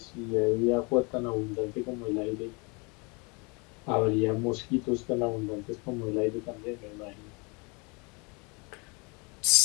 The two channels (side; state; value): right; quieter; 30.2 dB